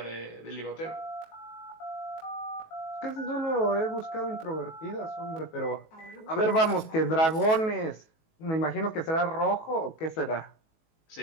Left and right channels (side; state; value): right; late; 19 ms